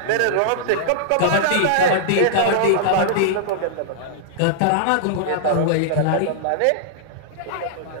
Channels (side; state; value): both; different; correlation -0.02